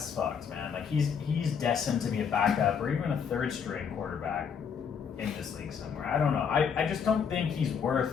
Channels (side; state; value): right; quieter; 6.9 dB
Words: fucked, man. Like, he's destined to be a backup or even a third-string quarterback in this league somewhere. I don't know. I just don't think he's